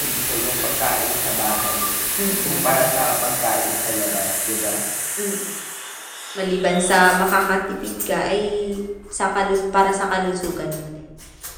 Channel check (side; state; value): both; identical; correlation 1.00